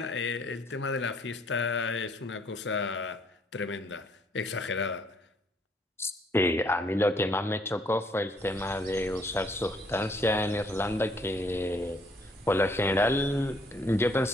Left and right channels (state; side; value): normal; both; correlation 0.66